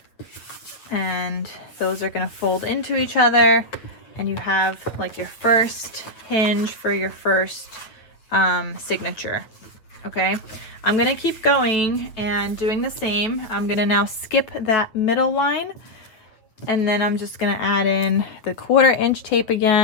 and those are gonna fold into each other, and you have like your first hinge for your first signature. Okay, I'm gonna keep going and doing the same. I'm gonna now skip that middle line, and then I'm just gonna add in the 1/4 inch tape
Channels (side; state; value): right; late; 8.8 ms